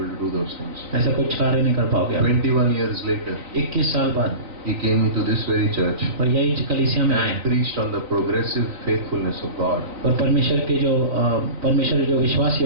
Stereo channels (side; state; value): left; late; 4.0 ms